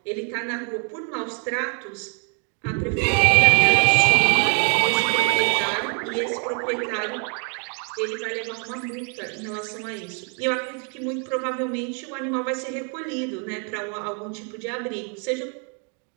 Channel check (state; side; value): quieter; left; 39.0 dB